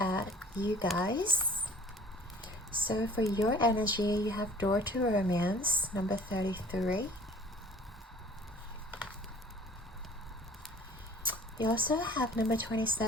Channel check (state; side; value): normal; both; correlation 0.50